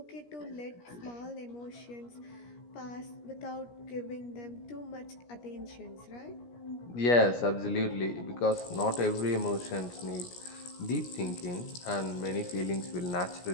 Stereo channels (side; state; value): right; late; 17 ms